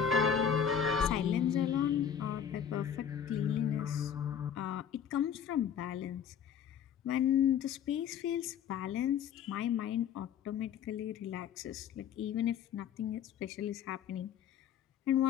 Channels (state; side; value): quieter; right; 8.3 dB